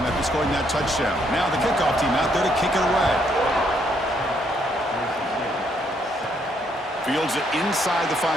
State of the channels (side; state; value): both; normal; correlation 0.72